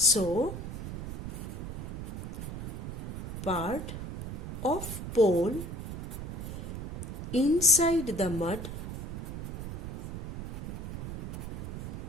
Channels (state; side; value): noise; right; rumble, 5 dB below the sound